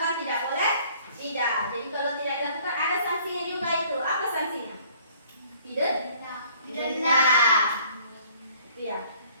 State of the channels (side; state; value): both; inverted; correlation -0.58